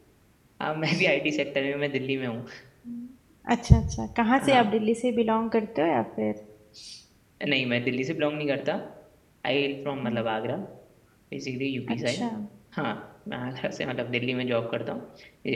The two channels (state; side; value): identical; both; correlation 1.00